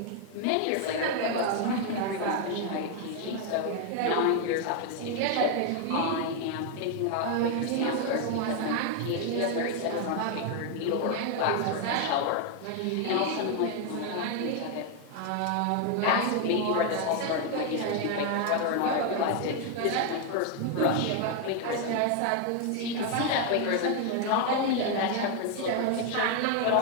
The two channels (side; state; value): both; different; correlation 0.01